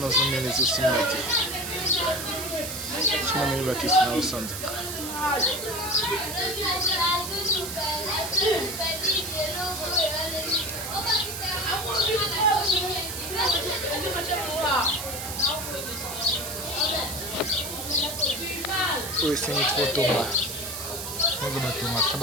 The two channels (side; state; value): right; noise; hiss, 7 dB below the sound